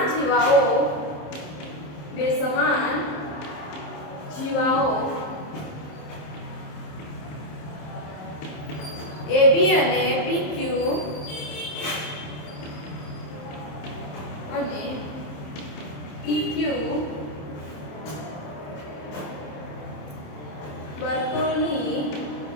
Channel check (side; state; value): right; late; 27 ms